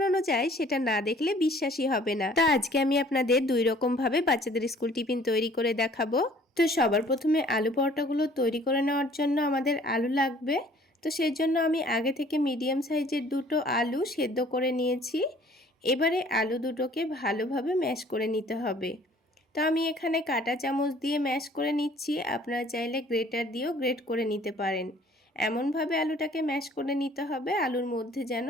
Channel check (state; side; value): normal; both; correlation 0.55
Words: যায় সেটা না দেখলে বিশ্বাসই হবে না। তো আজকে আমি আপনাদের দুই রকম ভাবে বাচ্চাদের স্কুল টিফিন তৈরি করে দেখাবো। তো সবার প্রথমে আলু পরোটাগুলো তৈরি করে নেওয়ার জন্য আমাদের আলু লাগবে। তো সেই জন্য আমি আগে থেকে মিডিয়াম সাইজের দুটো আলু সেদ্ধ করে নিয়েছি। এবারে আলু দুটোকে ভালোভাবে ম্যাশ করে নিতে হবে। তো আমি এখানে কাঁটা চামচ দিয়ে ম্যাশ করে নিচ্ছি, আপনারা চাইলে গ্রেটার দিয়েও গ্রেট করে নিতে পারেন। এমনভাবে আলুটাকে ম্যাশ করে নিতে হবে আলুর মধ্যে যেন